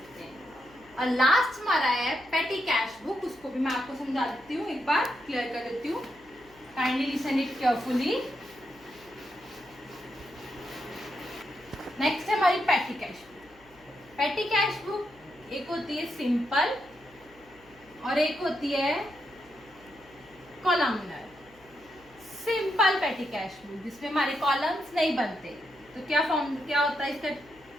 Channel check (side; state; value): left; noise; hum, 27 dB below the sound